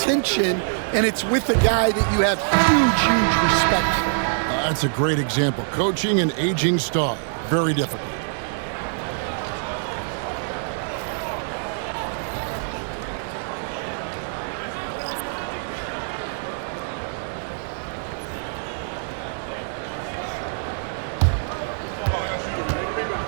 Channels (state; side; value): silent; left; digital silence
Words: and it's with a guy that you have huge respect for. That's a great example. Coaching an aging star. Very difficult.